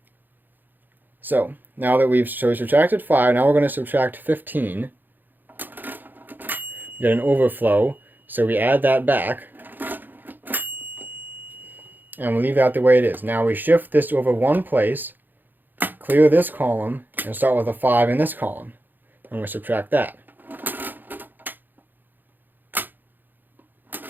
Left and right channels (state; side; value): late; left; 0.089 ms